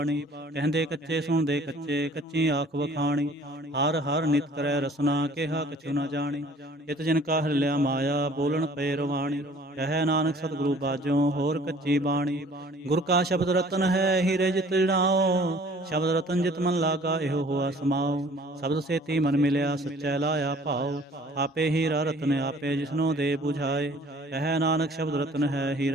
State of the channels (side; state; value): both; normal; correlation 0.53